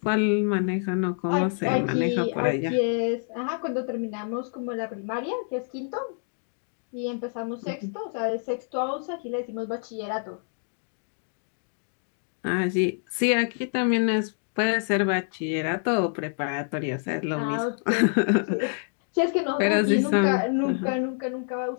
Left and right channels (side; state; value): right; silent; 60 dB below the other